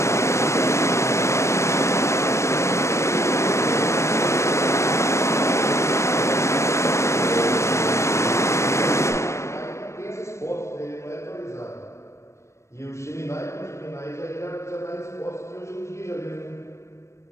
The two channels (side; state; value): right; late; 0.14 ms